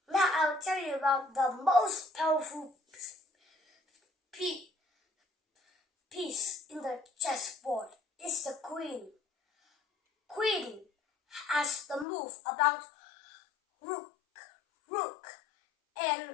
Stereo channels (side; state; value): right; drops out; at 12.1 s